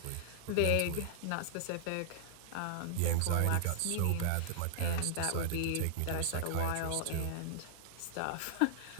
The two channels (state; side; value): different; both; correlation -0.01